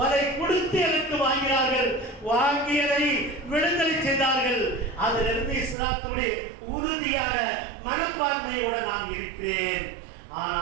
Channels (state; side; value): drops out; left; at 5.8 s